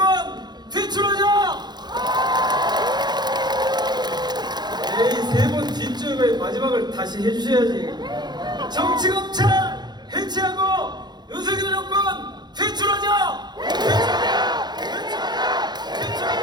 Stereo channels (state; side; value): late; left; 0.21 ms